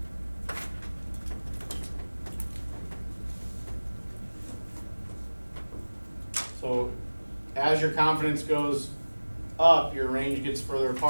So as your confidence goes up, your range gets further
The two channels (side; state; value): both; inverted; correlation -1.00